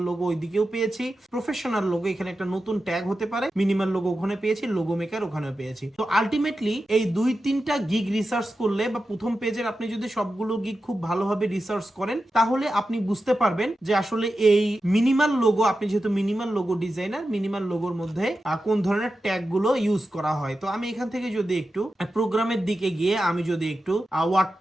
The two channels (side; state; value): both; normal; correlation 0.91